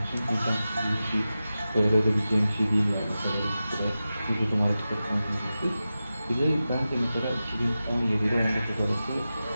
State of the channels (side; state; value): both; inverted; correlation -0.93